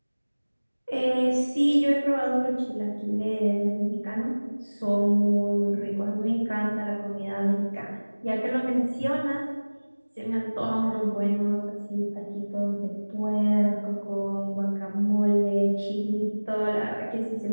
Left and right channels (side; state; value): both; inverted; correlation -1.00